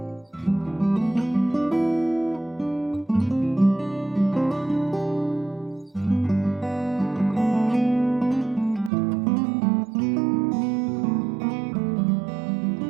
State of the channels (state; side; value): drops out; left; at 8.9 s